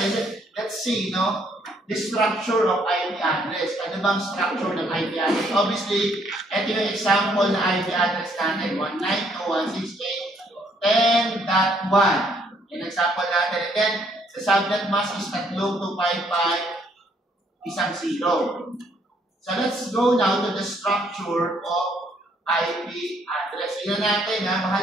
let's see, no? The structure of IP address. Ano bang structure ng IP address? Obviously, ito yung example na IP address natin. 192.168.10.1. Yung example natin. And then, the subnet mask is 3,255,10. So, let's go now to the structure of IP address. Tingnan natin, ha?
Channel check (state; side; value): normal; both; correlation 0.67